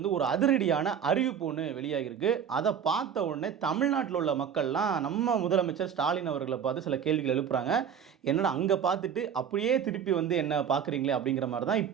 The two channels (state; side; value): quieter; left; 8.0 dB